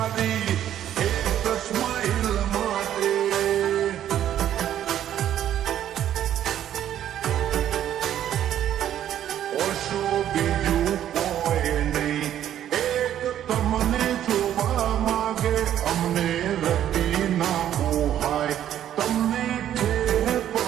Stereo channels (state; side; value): quieter; left; 11.0 dB